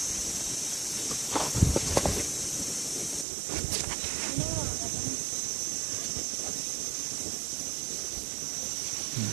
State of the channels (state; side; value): drops out; left; at 3.2 s